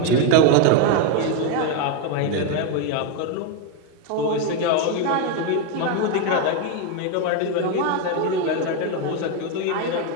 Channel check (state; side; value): different; both; correlation 0.02